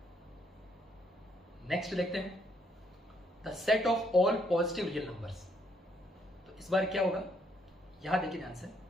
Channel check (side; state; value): both; normal; correlation 0.71